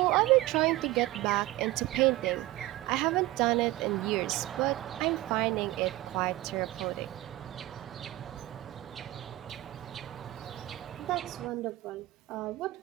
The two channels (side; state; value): left; quieter; 17.4 dB